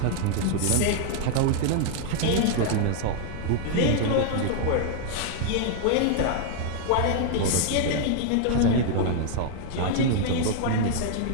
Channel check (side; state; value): both; different; correlation 0.00